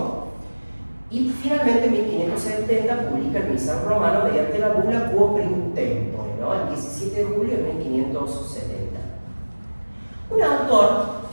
y finalmente en 1570 publica el Misal Romano mediante la bula Quo Primum Tempore, ¿no? El 17 de julio de 1570. Un autor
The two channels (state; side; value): inverted; both; correlation -1.00